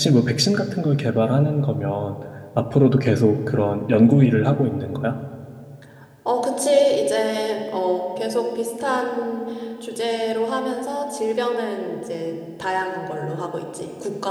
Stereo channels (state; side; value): identical; both; correlation 1.00